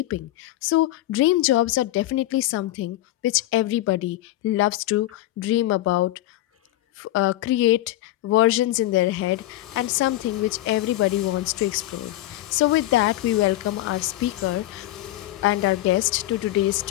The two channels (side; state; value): right; quieter; 15.4 dB